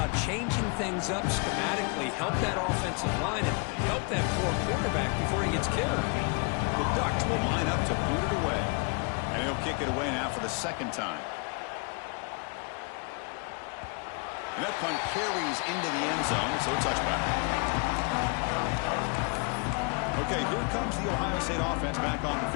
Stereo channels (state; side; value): quieter; right; 35.0 dB